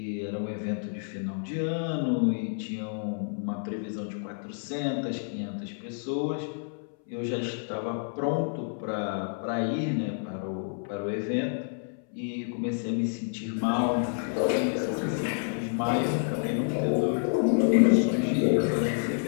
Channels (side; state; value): right; silent; 59 dB below the other